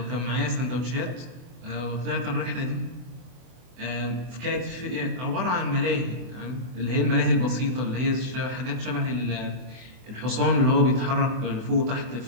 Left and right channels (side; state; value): left; late; 24 ms